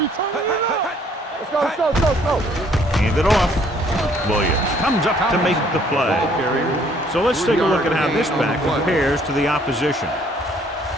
turn it up. Let's go. Hand it off. Williams comes up to make the play. So let's take a look at how this back compares to the opposition.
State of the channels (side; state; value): both; normal; correlation 0.62